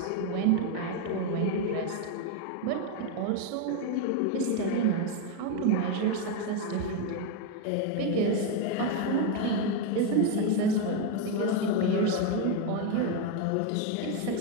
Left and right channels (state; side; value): different; both; correlation 0.02